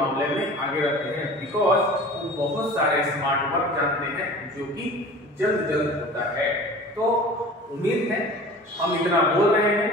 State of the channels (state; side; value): normal; both; correlation 0.41